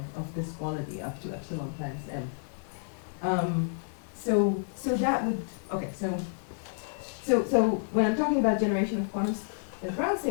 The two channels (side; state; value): right; silent; digital silence